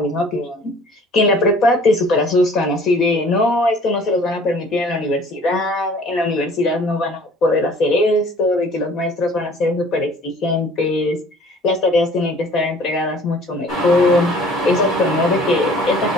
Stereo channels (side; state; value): both; normal; correlation 0.51